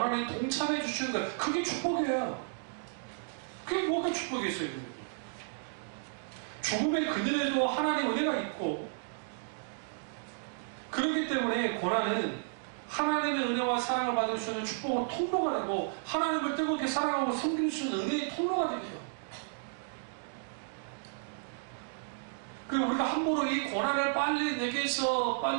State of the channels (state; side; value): silent; left; digital silence